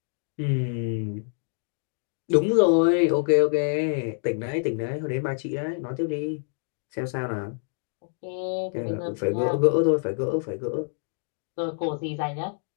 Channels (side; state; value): right; silent; 61 dB below the other